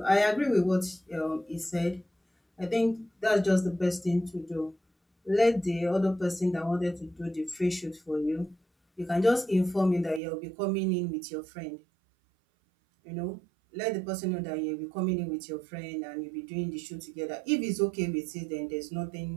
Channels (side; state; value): left; drops out; at 10.2 s